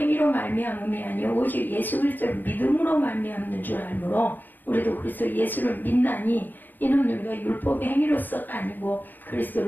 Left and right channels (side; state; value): right; late; 0.091 ms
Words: 말미암음이 아니요 오직 예수 그리스도를 믿음으로 말미암는 줄 알므로 우리도 그리스도 예수를 믿나니 이는 우리가 율법의 행위로서가 아니고